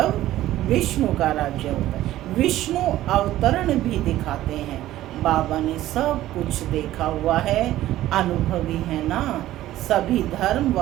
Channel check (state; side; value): quieter; left; 14.5 dB